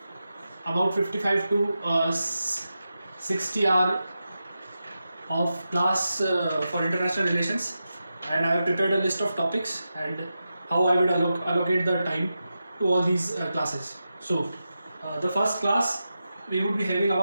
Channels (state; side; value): inverted; both; correlation -0.90